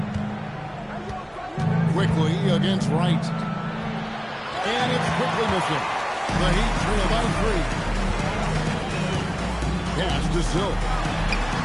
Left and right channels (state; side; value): identical; both; correlation 1.00